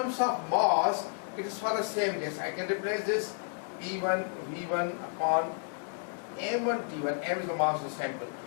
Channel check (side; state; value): right; silent; 57 dB below the other